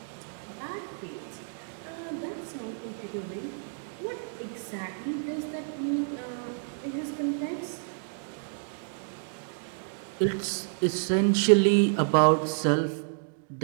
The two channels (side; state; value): left; silent; digital silence